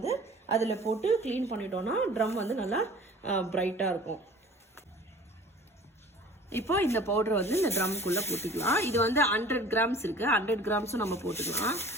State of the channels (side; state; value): both; normal; correlation 0.46